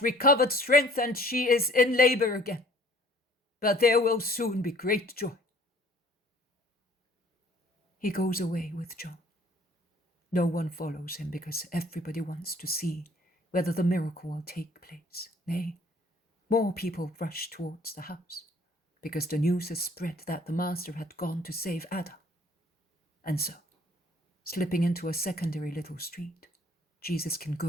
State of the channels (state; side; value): normal; both; correlation 0.55